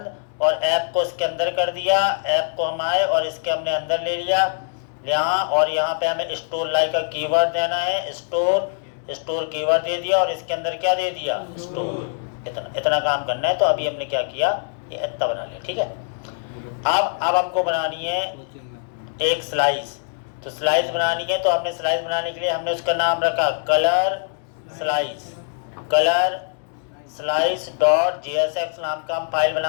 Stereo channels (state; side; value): silent; right; digital silence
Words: और ऐप को इसके अंदर कर दिया। ऐप को हम आए और इसके हमने अंदर ले लिया यहाँ, और यहाँ पे हमें स्टोर लाइक का कीवर्ड देना है, स्टोर कीवर्ड दे दिया, और इसके अंदर क्या दे दिया, स्टोर। इतना काम करना है। तो अभी हमने क्या किया, ये इतना बना लिया, ठीक है। अब हमको बनानी है एक स्लाइस। तो स्लाइस बनानी है, तो हमने स्लाइस बनाने के लिए हमने उसका नाम रखा कलर स्लाइस.jsx नाम का हम फाइल